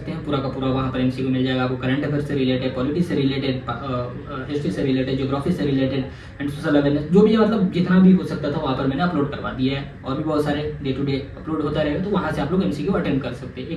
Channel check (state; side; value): identical; both; correlation 1.00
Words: हैं पूरा का पूरा। वहाँ पर एमसीक्यू मिल जाएगा आपको, करंट अफेयर से रिलेटेड, पॉलिटिक्स से रिलेटेड, हिस्ट्री से रिलेटेड, ज्योग्राफी से रिलेटेड एंड सोशल अवेयरनेस, जो भी है मतलब जितना भी हो सकता था वहाँ पर मैंने अपलोड करवा दिया है। और भी बहुत सारे डे टू डे अपलोड होता रहेगा, तो वहाँ से आप लोग एमसीक्यू अटेंड कर सकते हैं।